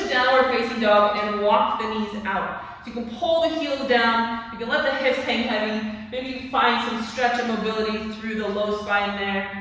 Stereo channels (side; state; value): both; identical; correlation 1.00